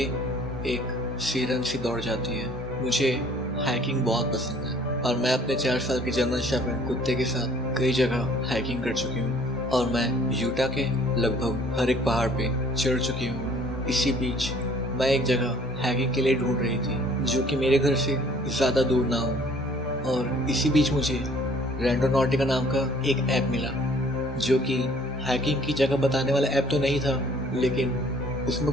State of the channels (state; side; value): normal; both; correlation 0.55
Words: एक सिरन सी दौड़ जाती है। मुझे हाइकिंग बहुत पसंद है और मैं अपने 4 साल के जर्मन शेफर्ड कुत्ते के साथ कई जगह हाइकिंग कर चुकी हूँ और मैं यूटा के लगभग हर एक पहाड़ पे चढ़ चुकी हूँ। इसी बीच मैं एक जगह हाइकिंग के लिए ढूंढ रही थी जो कि मेरे घर से ज़्यादा दूर ना हो, और इसी बीच मुझे रैंडोनॉटिका नाम का एक ऐप मिला, जो कि हाइकिंग की जगह बताने वाला ऐप तो नहीं था, लेकिन उसमें